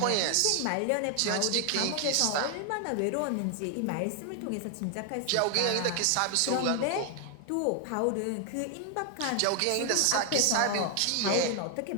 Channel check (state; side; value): different; both; correlation 0.00